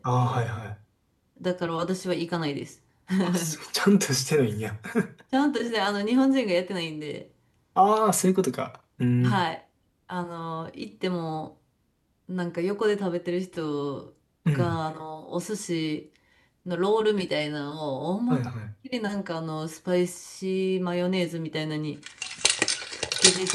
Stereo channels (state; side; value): identical; both; correlation 1.00